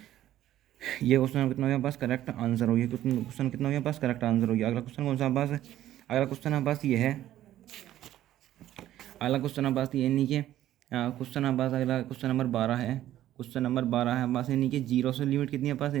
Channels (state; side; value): quieter; left; 13.0 dB